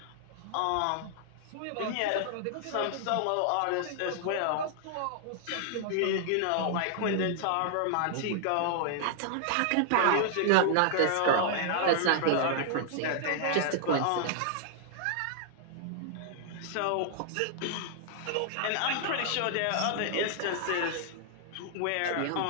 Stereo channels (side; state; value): both; different; correlation 0.00